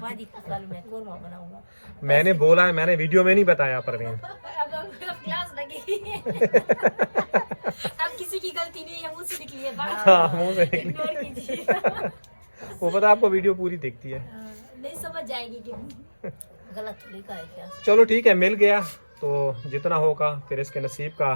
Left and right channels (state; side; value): inverted; both; correlation -1.00